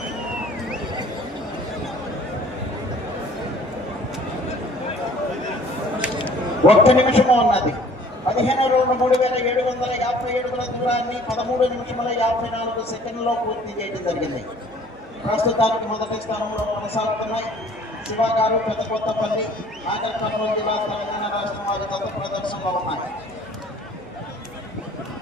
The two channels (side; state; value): right; noise; hum, 25 dB below the sound